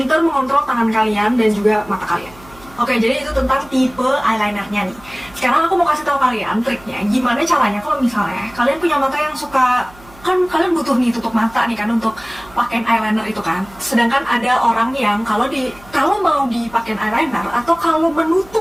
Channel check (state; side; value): noise; right; hum, 23 dB below the sound